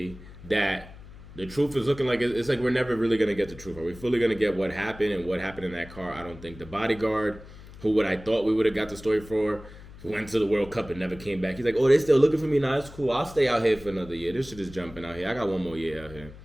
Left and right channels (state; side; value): noise; left; hum, 17 dB below the sound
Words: that the truth is looking like it's like we're never really going to get the truth. Are we fully going to get what happened and what happened in that car? I don't think. The bodyguard, who I thought we would have got the story for, who went to the World Cup and never came back. He's like, oh, they still looking for me? Nah, it's cool. I'll stay out here for another year. This shit is jumping out here. I got one more year out here.